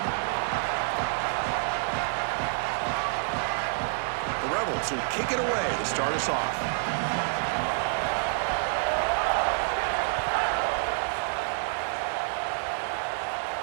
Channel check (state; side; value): silent; left; 58 dB below the other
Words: The Rebels will kick it away to start us off.